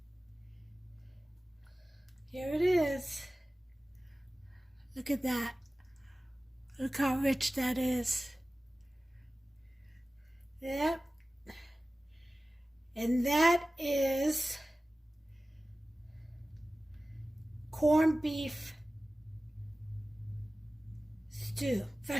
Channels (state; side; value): normal; both; correlation 0.96